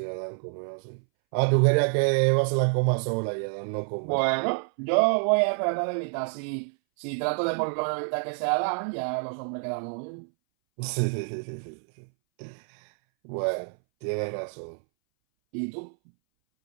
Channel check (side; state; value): left; silent; 60 dB below the other